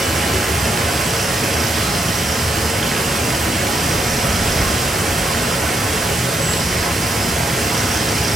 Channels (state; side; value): normal; both; correlation 0.79